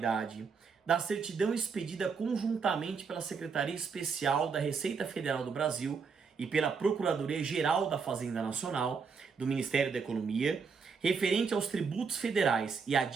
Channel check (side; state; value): left; quieter; 5.5 dB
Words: da certidão expedida conjuntamente pela Secretaria Especial da Receita Federal do Brasil e pela Procuradoria-Geral da Fazenda Nacional do Ministério da Economia, referente aos tributos federais e à